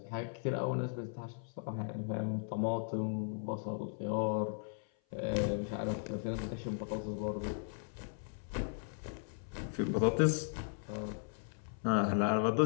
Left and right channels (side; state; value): right; silent; 53 dB below the other